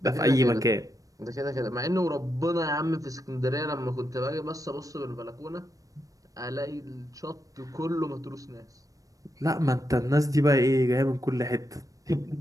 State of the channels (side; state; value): left; late; 0.16 ms